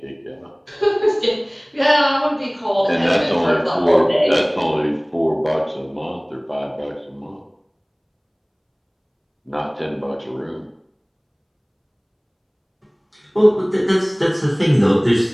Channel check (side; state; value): both; identical; correlation 1.00